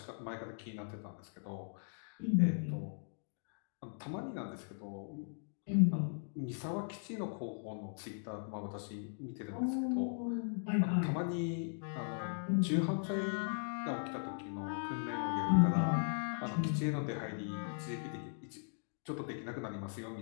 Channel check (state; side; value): silent; right; digital silence